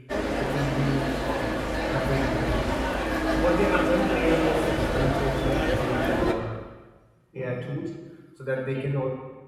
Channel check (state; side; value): identical; both; correlation 1.00